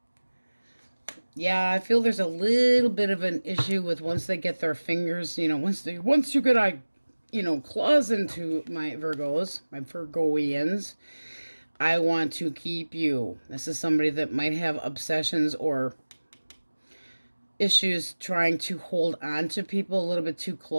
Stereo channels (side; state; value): both; inverted; correlation -1.00